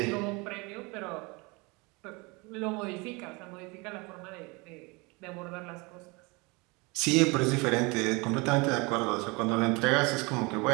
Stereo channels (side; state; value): left; quieter; 27.0 dB